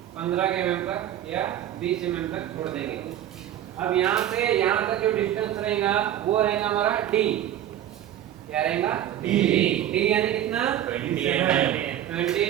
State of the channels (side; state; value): left; quieter; 11.6 dB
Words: 15 mm तक या 20 mm तक छोड़ देंगे। अब यहाँ से यहाँ तक जो डिस्टेंस रहेगा वो रहेगा हमारा d। क्या रहेगा? d यानी कितना?